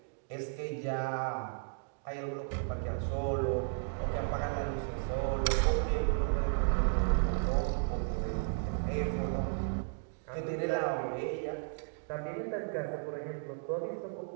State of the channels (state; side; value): silent; left; 55 dB below the other